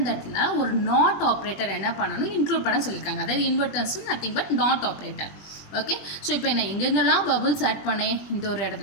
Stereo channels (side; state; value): right; late; 20 ms